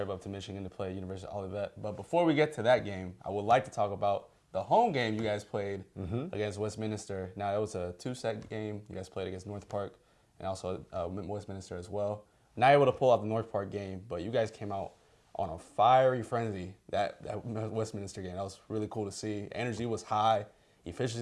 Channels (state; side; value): identical; both; correlation 1.00